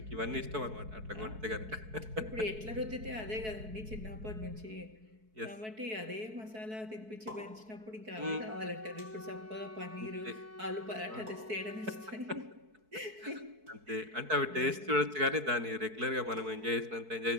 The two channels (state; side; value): late; left; 4.6 ms